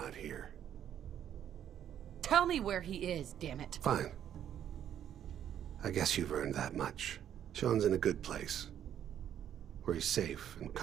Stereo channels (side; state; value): left; quieter; 10.1 dB